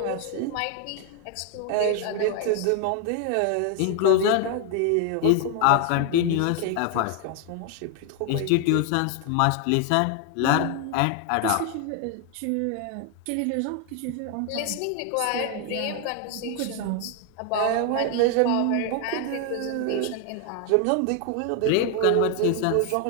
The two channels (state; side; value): different; both; correlation 0.01